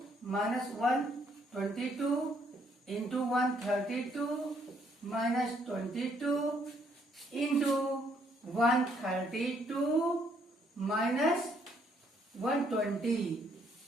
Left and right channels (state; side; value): normal; both; correlation 0.69